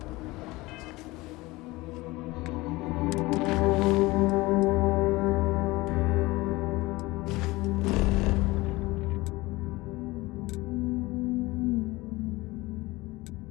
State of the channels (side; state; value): right; quieter; 21.0 dB